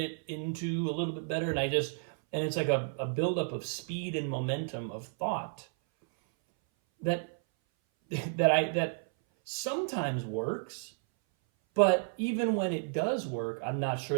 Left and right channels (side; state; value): left; silent; 56 dB below the other